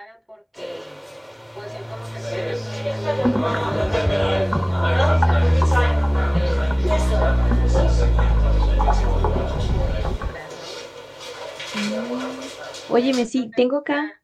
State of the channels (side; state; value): both; identical; correlation 1.00